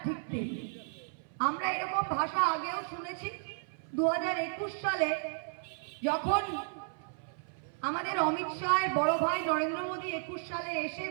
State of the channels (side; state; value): left; silent; 55 dB below the other